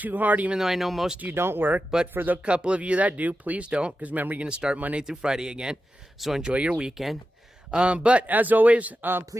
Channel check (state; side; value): normal; both; correlation 0.91